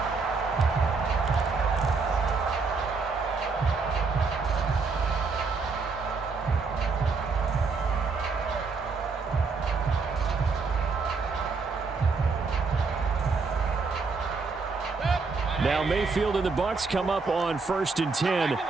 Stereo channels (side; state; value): left; quieter; 4.5 dB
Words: Now Mayfield and the Bucks come up on first and 10